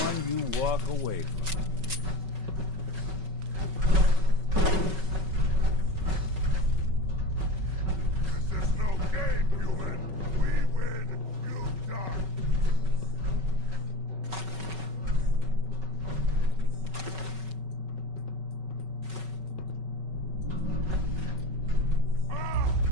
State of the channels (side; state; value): left; late; 5.3 ms